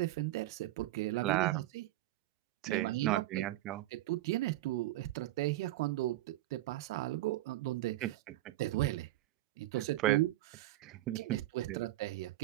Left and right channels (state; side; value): quieter; left; 16.2 dB